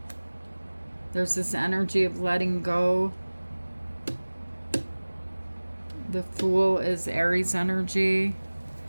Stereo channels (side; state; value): both; inverted; correlation -1.00